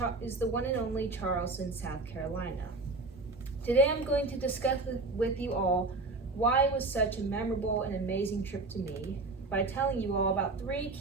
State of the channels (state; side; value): quieter; left; 3.4 dB